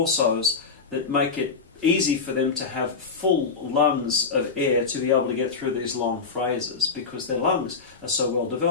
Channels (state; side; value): quieter; right; 4.9 dB